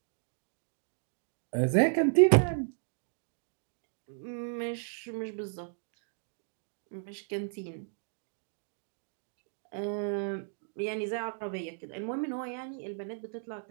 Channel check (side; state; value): left; silent; digital silence